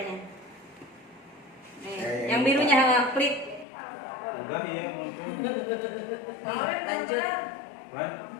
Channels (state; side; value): drops out; right; at 3.7 s